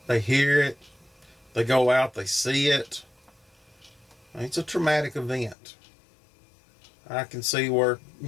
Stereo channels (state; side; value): drops out; right; at 5.6 s